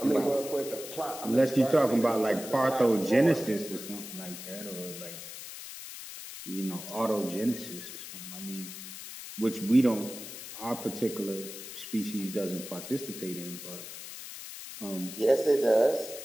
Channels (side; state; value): left; noise; hiss, 11 dB below the sound